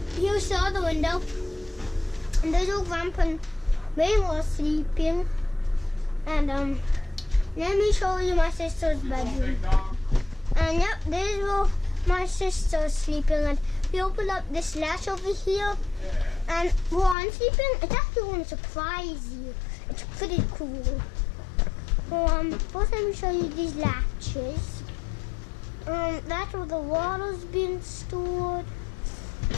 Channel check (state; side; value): drops out; right; at 17.2 s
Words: here's the other window. And there's old Grandpa and Mama sleeping. And let me show you my sister's bedroom. And yep, this is where my sister's sleeping. And we open up this latch over here. And while I'm sleeping, it's actually going to surprise you. It's pretty cool. First let me show you these latches. That's where the water's being stored.